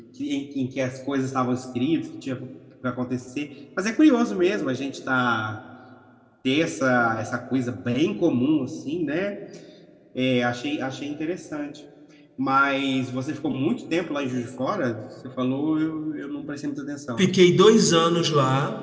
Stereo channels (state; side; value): identical; both; correlation 1.00